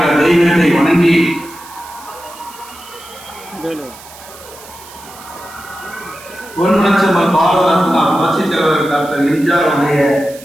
தெய்வத்தை வணங்கி பொன்மனச்செம்மல் பாரத ரத்னா புரட்சி தலைவர் டாக்டர் எம்ஜிஆர் அவருடைய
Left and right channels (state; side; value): noise; right; hiss, 19 dB below the sound